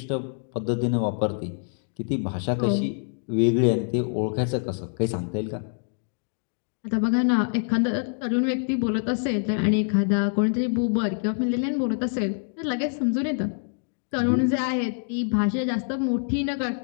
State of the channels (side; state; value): right; silent; 61 dB below the other